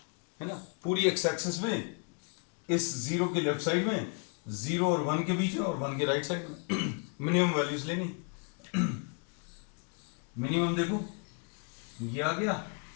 है ना। पूरी एक्स एक्सिस में इस 0 के लेफ्ट साइड में, 0 और 1 के बीच में और 1 के राइट साइड में मिनिमम वैल्यूज लेनी। मिनिमम देखो ये आ गया,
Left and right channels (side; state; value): right; quieter; 39.1 dB